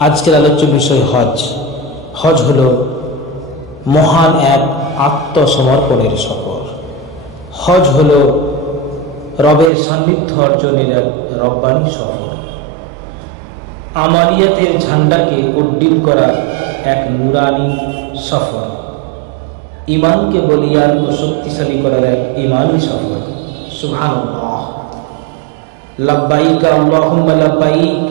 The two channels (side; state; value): left; drops out; at 9.7 s